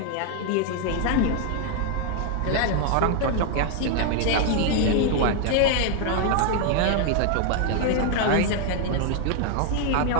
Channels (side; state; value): both; different; correlation 0.00